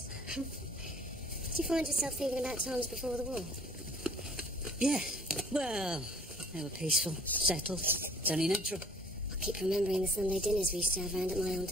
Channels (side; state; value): both; normal; correlation 0.55